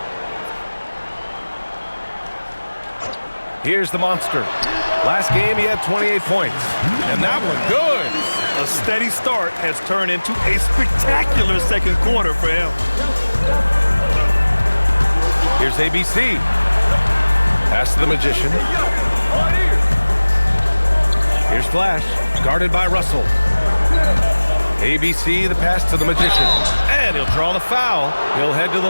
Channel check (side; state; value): both; inverted; correlation -1.00